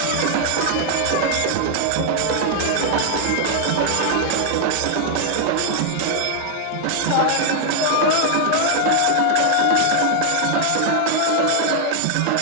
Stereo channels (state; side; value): different; both; correlation 0.00